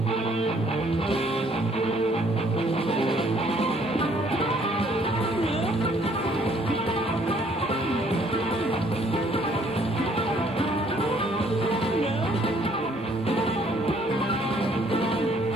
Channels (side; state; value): both; normal; correlation 0.63